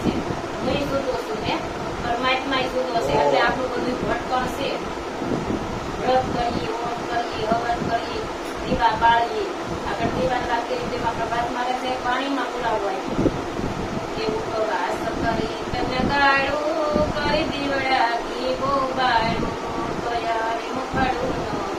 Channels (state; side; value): identical; both; correlation 1.00